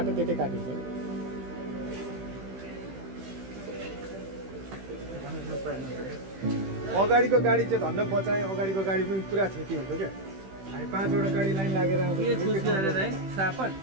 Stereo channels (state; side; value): late; left; 15 ms